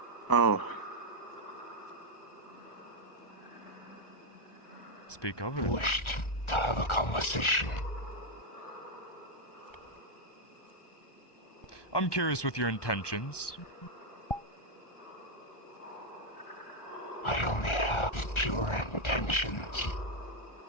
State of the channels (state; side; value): late; right; 1.4 ms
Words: Oh. Speak of it. Wished to have a conversation. I'm curious with your intentions. I only have pure intentions.